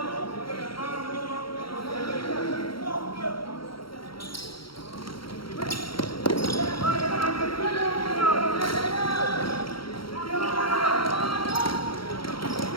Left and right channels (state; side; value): late; right; 0.74 ms